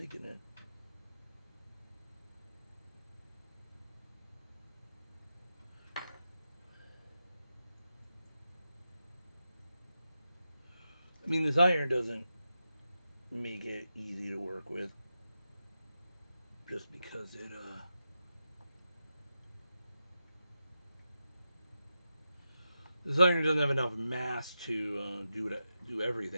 it. I mean, this iron doesn't make it easy to work with, just because it this iron doesn't have enough mass to do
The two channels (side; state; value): both; inverted; correlation -0.89